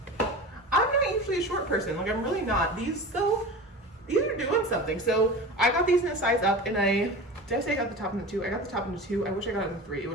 I'm not usually a short person, like I'm really not. These though, these are doing something. So I got these in a size up, and did I say I got the top in the 2? I got the top in the 2. I wish I got it in the 3. It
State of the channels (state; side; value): normal; both; correlation 0.33